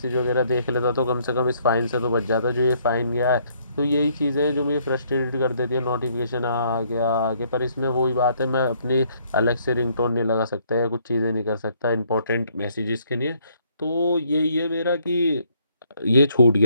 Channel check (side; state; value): both; inverted; correlation -0.67